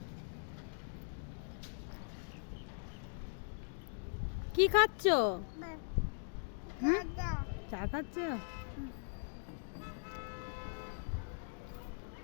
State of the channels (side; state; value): right; silent; digital silence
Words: কি খাচ্ছ? চা খাচ্ছ?